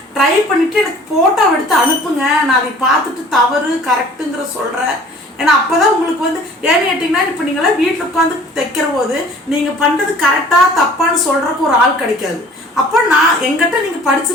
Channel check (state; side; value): normal; both; correlation 0.50